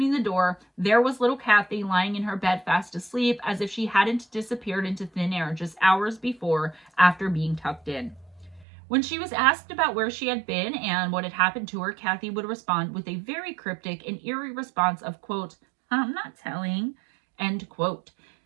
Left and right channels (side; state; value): left; drops out; at 8.7 s